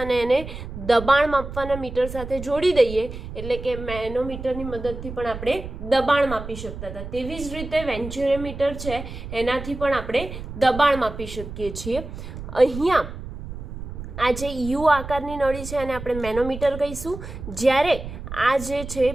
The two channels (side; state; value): right; noise; rumble, 10 dB below the sound